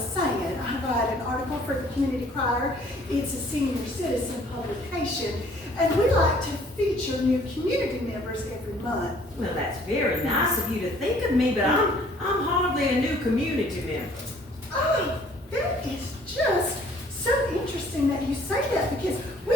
I write an article for the Community Crier. It's a senior citizen publication, and we like to feature new community members every month. Well, that's very nice of you to think of me, but I'm hardly a new community member. Oh, that is just so interesting that you say that, because we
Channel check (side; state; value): both; normal; correlation 0.57